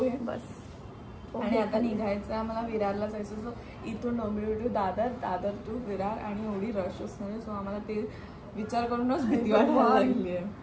बस. आणि आता निघायचं आम्हाला विरारला जायचं. सो इथून डोंबिवली टू दादर टू विरार आणि एवढी रश असणार. सो आम्हाला ते विचार करूनच भीती वाटायला लागली आहे.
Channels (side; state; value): both; identical; correlation 1.00